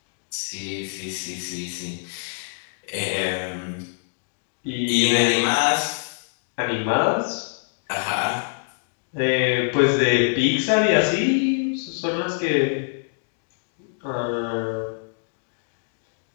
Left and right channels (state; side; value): silent; right; digital silence